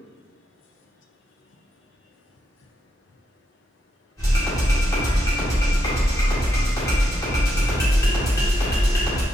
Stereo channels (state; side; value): normal; both; correlation 0.81